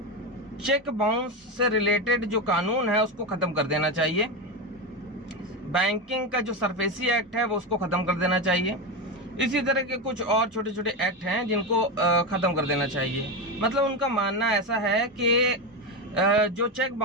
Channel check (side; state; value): both; normal; correlation 0.14